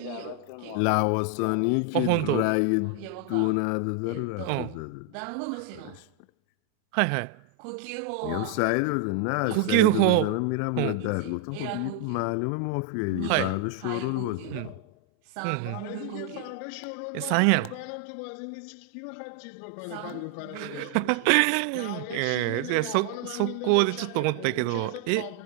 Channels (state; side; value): different; both; correlation 0.01